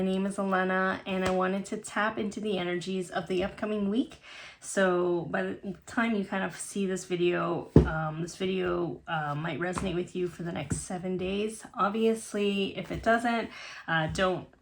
name is Alana and I wanted to tap into the energies of the upcoming week. So by the time you kind of see this video, might resonate with you for the next 7 days. Obviously, if it doesn't, don't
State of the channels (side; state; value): both; identical; correlation 1.00